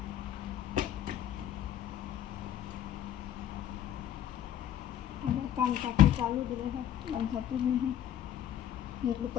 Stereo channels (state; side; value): quieter; right; 10.8 dB